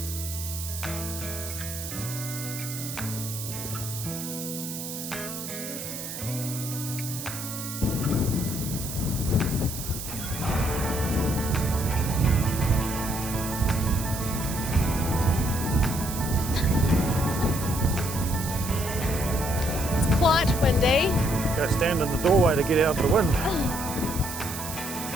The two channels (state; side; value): noise; right; hiss, 8 dB below the sound